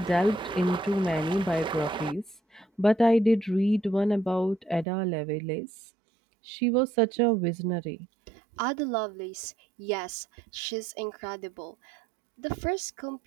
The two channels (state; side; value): drops out; left; at 4.9 s